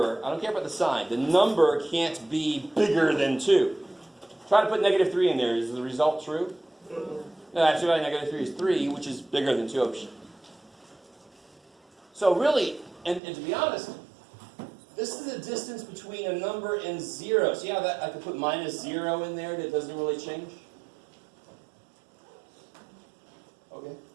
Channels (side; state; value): left; drops out; at 13.2 s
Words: I don't care about the sign, the number can't be bigger than 2. Try to put negative 3 in there. Is the result true? No, absolute value of negative 3 is 3, which is bigger than 2. So really, and to be honest, this is the distance between a number and 0. See how that I could put minus 0 in there that doesn't really change? Okay.